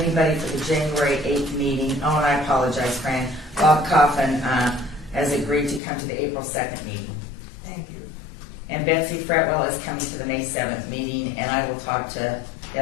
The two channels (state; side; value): drops out; right; at 5.8 s